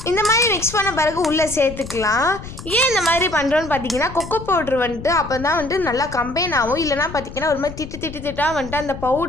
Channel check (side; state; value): left; noise; rumble, 12 dB below the sound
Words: இந்த மாதிரி மிக்ஸ் பண்ண பிறகு உள்ளே சேர்த்துக்கலாம். ஏன் இந்த மாதிரி பண்ணுறோன்னு பார்த்தீங்கன்னா கொக்கோ பவுட்ரு அப்போ தான் நல்லா கம்பைன் ஆகும். இல்லைனா பார்த்தீங்கன்னா ஒரு மாதிரி திட்டாக அந்த